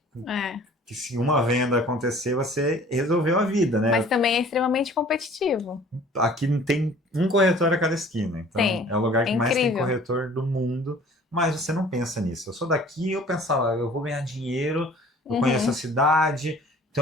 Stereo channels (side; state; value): both; normal; correlation 0.50